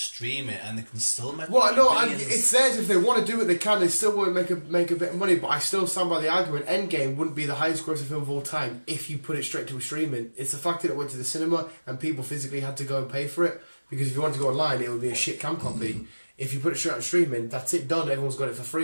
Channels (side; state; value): both; inverted; correlation -1.00